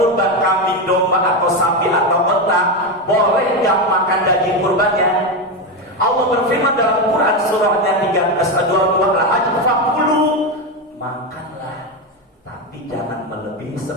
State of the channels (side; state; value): both; normal; correlation 0.12